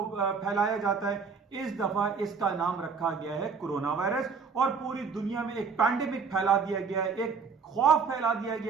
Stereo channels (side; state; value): left; quieter; 5.5 dB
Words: फैलाया जाता है। इस दफा इसका नाम रखा गया है कोरोना वायरस और पूरी दुनिया में एक पैंडेमिक फैला दिया गया है, एक खौफ फैला दिया